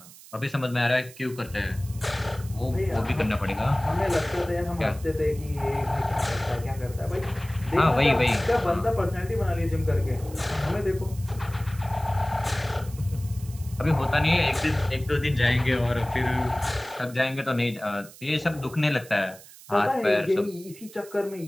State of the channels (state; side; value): noise; right; hiss, 20 dB below the sound